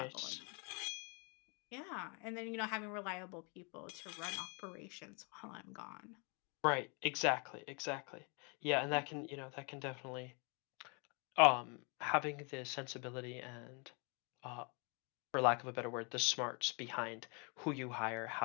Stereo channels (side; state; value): right; quieter; 34.2 dB